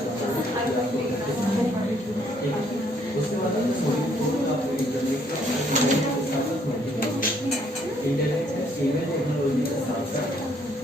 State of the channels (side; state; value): both; normal; correlation 0.67